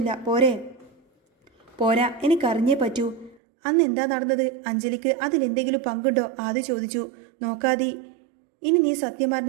പോരാ, എനിക്കറിഞ്ഞേ പറ്റൂ. അന്ന് എന്താ നടന്നത്? അഞ്ജലിക്ക് അതിലെന്തെങ്കിലും പങ്കുണ്ടോ? ആദി ചോദിച്ചു. നോക്കാതി, ഇനി നീ സത്യം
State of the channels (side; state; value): left; drops out; at 3.4 s